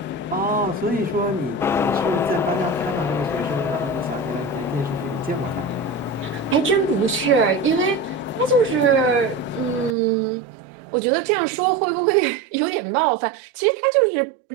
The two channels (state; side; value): drops out; left; at 10.0 s